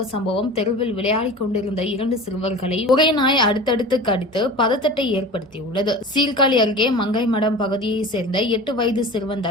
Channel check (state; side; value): normal; both; correlation 0.36